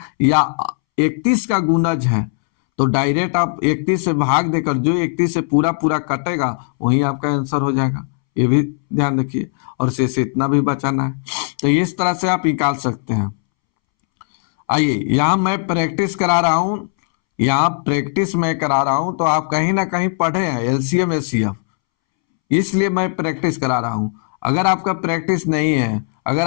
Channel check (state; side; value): silent; right; 66 dB below the other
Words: या 31 का गुणज है तो डायरेक्ट आप 31 से भाग देकर जो 31 से पूरा पूरा कटेगा वही आपका आंसर हो जाएगा, ये भी ध्यान रखिए, और से इतना भी बचाना है, तो इस तरह से आप निकाल सकते हैं। आइए यहाँ मैं प्रैक्टिस करा रहा हूं, यहाँ प्रैक्टिस मैं करा रहा हूं, तो आप कहीं ना कहीं पढ़े हैं एलसीएम एचसीएफ, इसलिए मैं प्रैक्टिस करा रहा हूं। अगर आपका प्रैक्टिस नहीं है, अगर